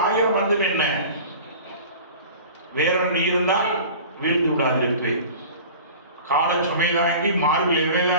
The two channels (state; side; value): inverted; both; correlation -0.40